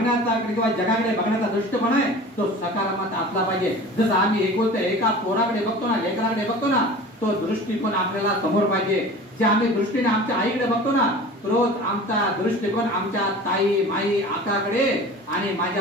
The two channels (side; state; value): both; normal; correlation 0.39